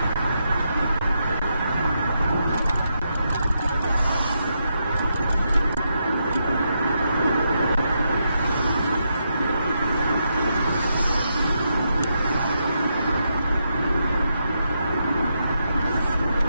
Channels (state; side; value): inverted; both; correlation -0.82